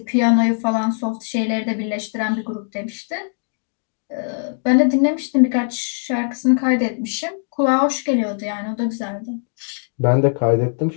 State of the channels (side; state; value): right; silent; digital silence